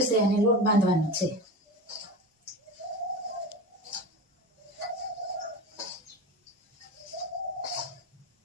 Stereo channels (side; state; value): both; normal; correlation 0.28